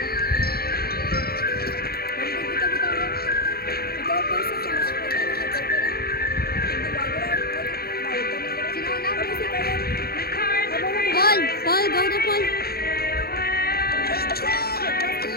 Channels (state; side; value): late; right; 0.45 ms